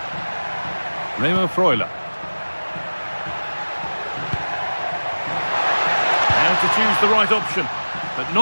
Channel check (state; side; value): inverted; both; correlation -1.00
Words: Remo Freuler. Now to choose the right option, but